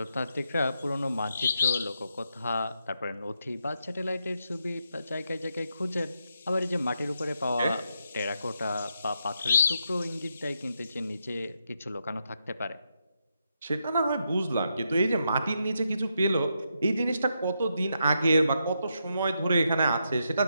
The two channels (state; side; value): inverted; both; correlation -0.82